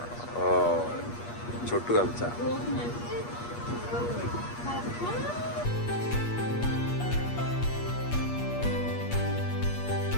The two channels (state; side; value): late; right; 8.4 ms